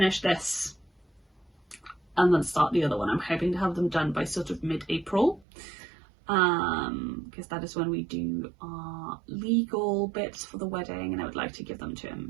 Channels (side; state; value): left; drops out; at 5.5 s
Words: this and then start the other one. I'm hoping to have them done by sort of mid-April, because that is when we do our legal bits for the wedding, and I would like to give them to